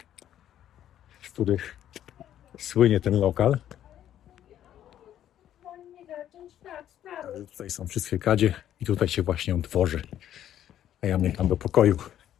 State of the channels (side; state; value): right; quieter; 11.1 dB